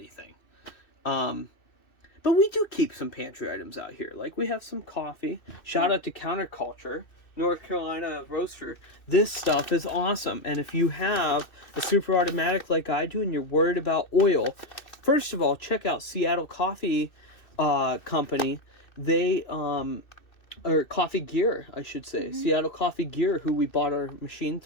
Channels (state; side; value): late; right; 2.6 ms